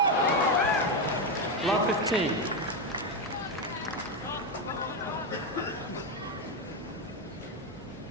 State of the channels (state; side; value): normal; both; correlation 0.09